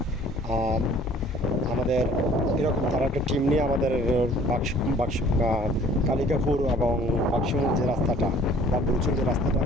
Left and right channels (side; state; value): both; normal; correlation 0.53